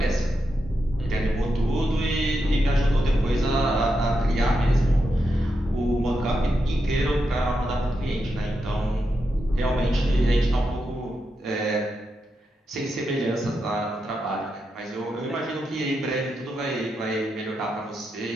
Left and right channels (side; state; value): both; normal; correlation 0.85